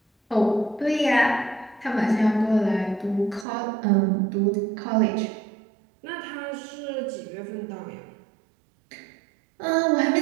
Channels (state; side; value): drops out; left; at 3.5 s